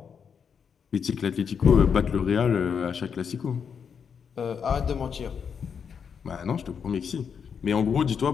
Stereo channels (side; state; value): right; quieter; 6.8 dB